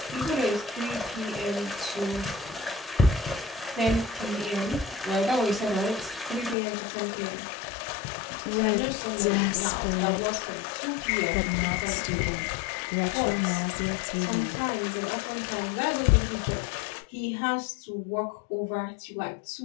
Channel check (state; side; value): drops out; right; at 6.6 s